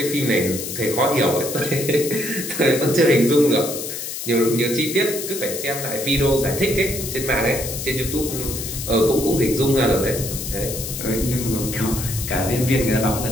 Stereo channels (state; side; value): noise; left; hiss, 6 dB below the sound